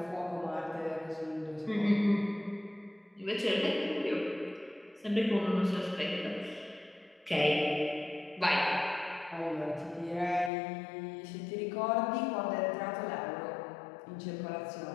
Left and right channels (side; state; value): right; drops out; at 10.5 s